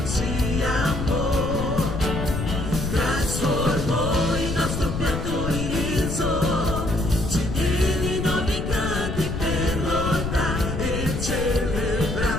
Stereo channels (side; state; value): left; noise; rumble, 4 dB below the sound